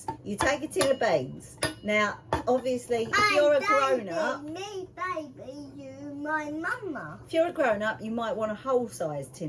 You take a tin of beans. Now, obviously, if you're a grown-up... Me, baby, you, my mama. If you're a grown-up, you might want a whole-sized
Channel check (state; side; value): identical; both; correlation 1.00